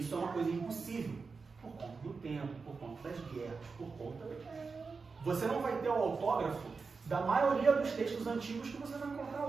é uma coisa impossível, por conta do tempo, por conta das guerras, por conta... Você não vai ter o autógrafo da maioria dos textos antigos que você vai encontrar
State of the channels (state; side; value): quieter; left; 4.7 dB